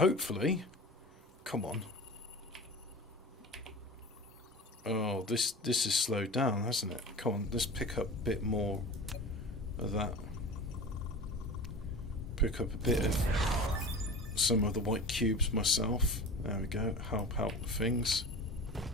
come on. Oh, this is slowed down, hasn't it? Come on, let's pick up a bit more of that pick up a bit of some of the white cubes myself. There we go, help out with things.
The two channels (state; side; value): normal; both; correlation 0.34